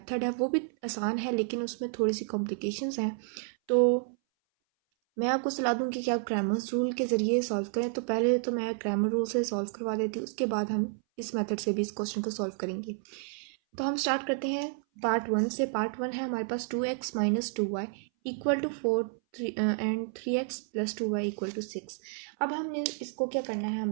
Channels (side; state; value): left; silent; 57 dB below the other